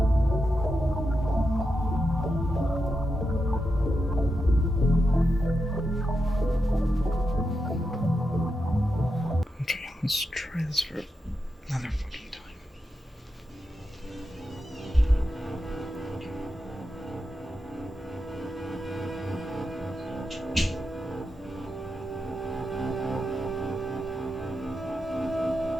Let's try this for another fucking time.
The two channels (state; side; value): normal; both; correlation 0.87